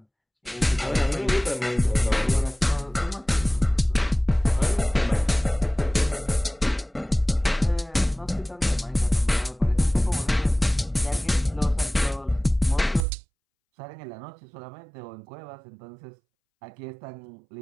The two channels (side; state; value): left; drops out; at 13.1 s